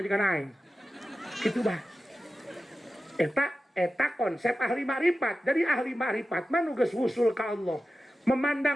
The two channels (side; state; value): both; normal; correlation 0.93